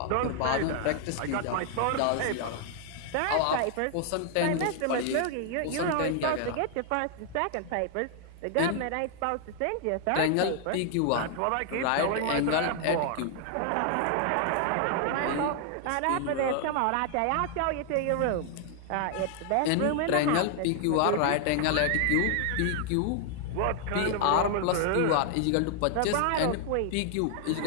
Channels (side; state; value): both; different; correlation 0.00